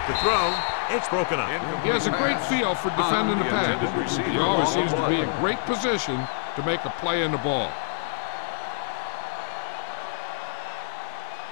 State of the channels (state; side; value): silent; right; digital silence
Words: the throw, it's broken up. He has a great feel for defending the pass. He always seems to be in great position to make a play in the ball.